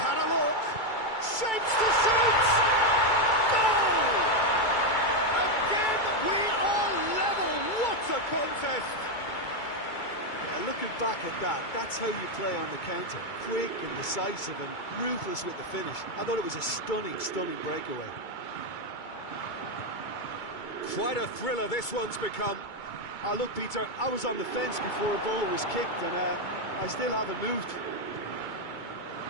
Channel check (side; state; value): right; late; 2.3 ms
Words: had a look. Shapes to shoot! Goal! Again, we are level. What a contest! Yeah, looking back at that, that's how you play on the counter. Quick and decisive and ruthless with the finish. I thought it was a stunning, stunning breakaway. Quite a thriller this one's become. Oh, look, Peter, I was on the fence before a ball was kicked, and I still haven't moved.